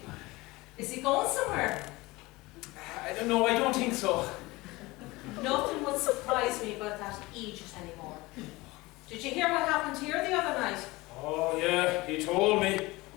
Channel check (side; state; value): right; quieter; 21.5 dB